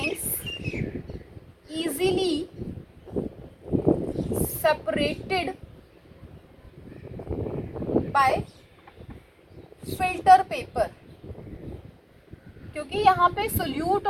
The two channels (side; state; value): both; identical; correlation 1.00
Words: easily separated by filter paper। क्योंकि यहाँ पे सोल्यूट